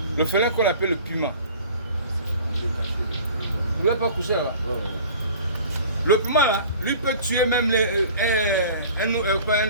Le félin qu'on appelle le Puma. Vous n'avez pas couché là? Le Puma, là, lui peut tuer même pas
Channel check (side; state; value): both; inverted; correlation -0.45